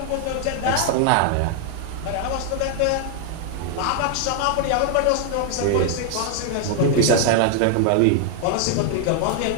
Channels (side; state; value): both; different; correlation 0.00